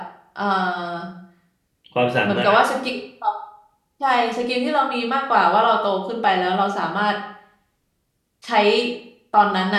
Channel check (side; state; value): both; identical; correlation 1.00